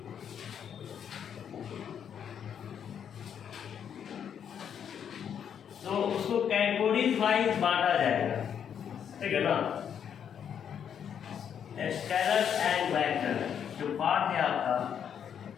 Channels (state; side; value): quieter; right; 8.3 dB